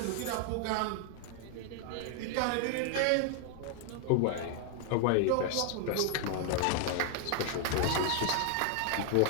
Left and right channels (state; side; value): different; both; correlation 0.00